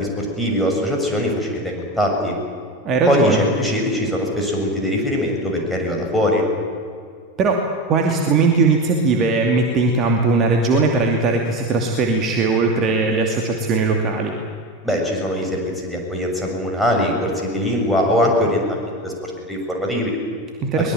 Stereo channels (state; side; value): normal; both; correlation 0.24